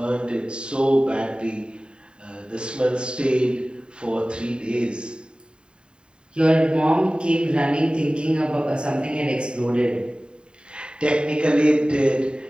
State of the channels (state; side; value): late; left; 0.050 ms